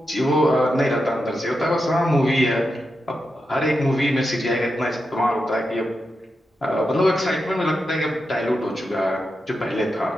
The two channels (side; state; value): both; normal; correlation 0.88